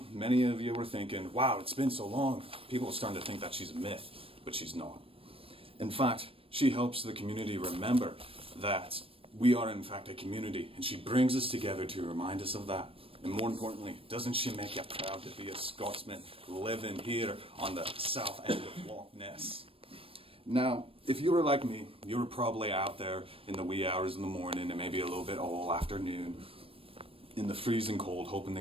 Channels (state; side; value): late; left; 0.27 ms